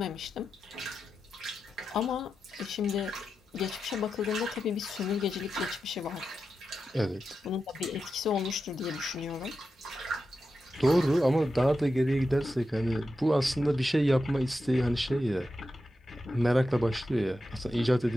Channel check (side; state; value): both; normal; correlation 0.90